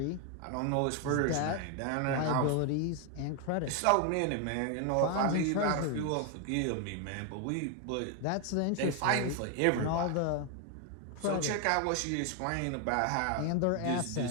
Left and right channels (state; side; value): different; both; correlation 0.01